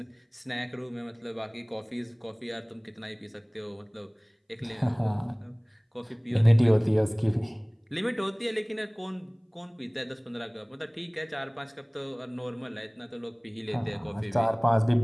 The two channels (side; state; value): both; identical; correlation 1.00